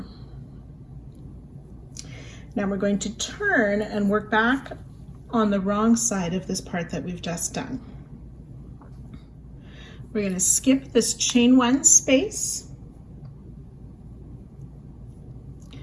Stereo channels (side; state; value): both; identical; correlation 1.00